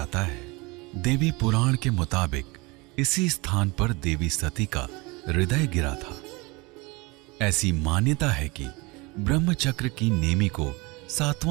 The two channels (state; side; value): quieter; left; 25.5 dB